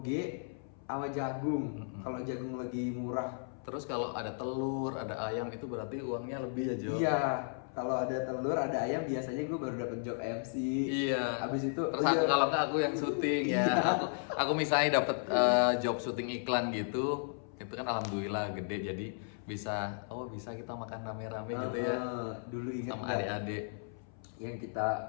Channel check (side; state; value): right; silent; 55 dB below the other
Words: sama jagung. Kalau jagung lagi murah. Terus kalau ada telur, ada ayam itu berarti uangnya lebih ya Jo. Iya, kalau ada telur, ada ayam biasanya gue baru dapet job MC. Iya. Habis itu Terus kalau nggak aku yang syuting ya. Aku misalnya dapet job syuting iklan gitu, itu kan alhamdulillah gede jadi bisa kita makan rame-rame gitu ya. Dulu ingat Sama nggak adik-adik. yang kita